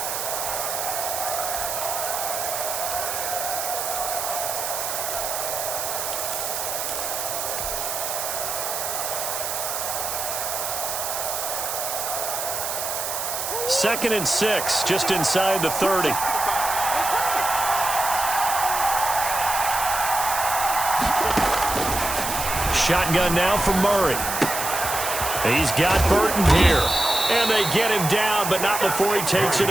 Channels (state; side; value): noise; right; hiss, 3 dB below the sound